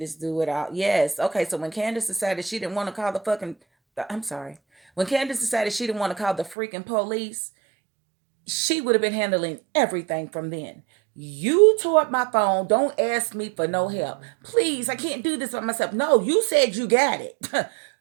do it all. Yes. Okay. So when Candace decided she didn't want to call the fucking, I'm sorry. When Candace decided she didn't want to call the freaking police, she would have been handling everything from then. You tore up my phone. Don't ask me for no help. Please, I can't do this by myself. No, you said you got it.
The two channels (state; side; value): drops out; left; at 6.6 s